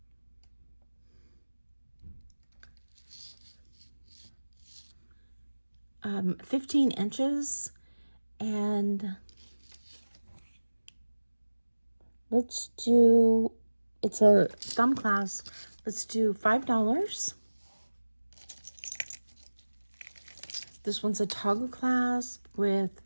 15 inches, and let's do, it's a thumb clasp. Let's do $5. This one's a toggle clasp with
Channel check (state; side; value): inverted; both; correlation -1.00